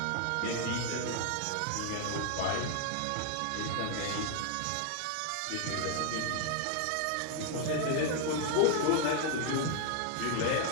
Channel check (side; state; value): both; different; correlation 0.00